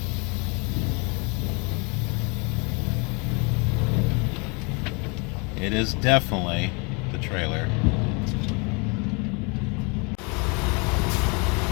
It is definitely the trailer.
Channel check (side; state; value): right; quieter; 32.0 dB